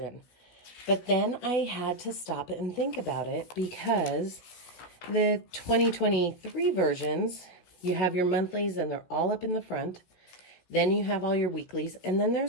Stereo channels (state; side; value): late; right; 16 ms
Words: But then I had to stop and think about it because the 2023 versions, you have your monthlies and they're all up in the front. Then you have all your weeklies. And then